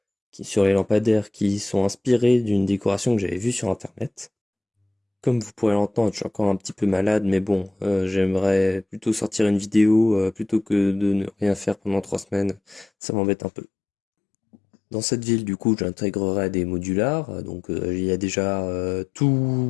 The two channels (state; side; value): drops out; right; at 12.9 s